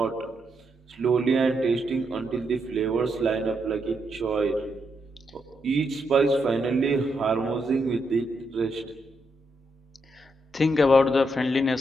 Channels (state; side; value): normal; both; correlation 0.80